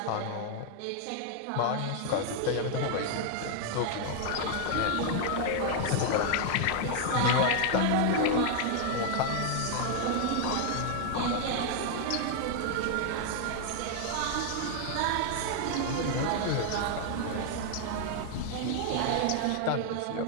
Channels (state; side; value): different; both; correlation 0.00